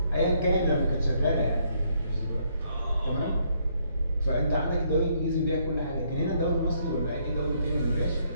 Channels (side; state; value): both; inverted; correlation -0.70